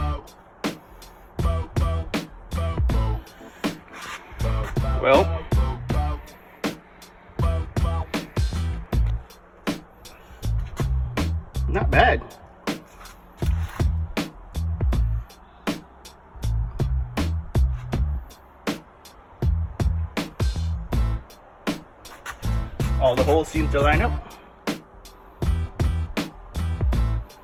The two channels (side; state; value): both; identical; correlation 1.00